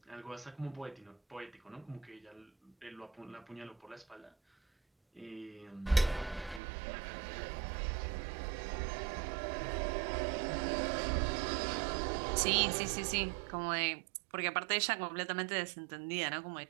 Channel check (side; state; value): left; drops out; at 6.6 s